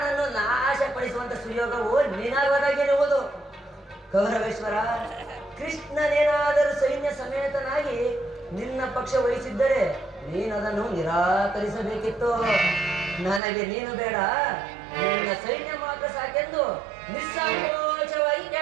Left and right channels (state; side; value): drops out; left; at 13.4 s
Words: ನಾಶಪಡಿಸುವಂತ ಸುಯೋಗವು ನಿನಗೊದಗಿರುವುದು. ಕೌರವೇಶ್ವರ, ಕೃಷ್ಣನೇನಾದರೂ ಸೈನ್ಯ ಸಮೇತನಾಗಿ ನಿನ್ನ ಪಕ್ಷ ವಹಿಸಿದ್ದರೆ ನೀನದನ್ನು ನಿರಾಕರಿಸಬೇಕಿತ್ತು. ನನಗೆ ನೀನು ಬೇಡ, ನಿನ್ನ ಸೈನ್ಯ ಮಾತ್ರ ಸಾಕೆಂದು ನಿಸ್ಸಂಕೋಚವಾಗಿ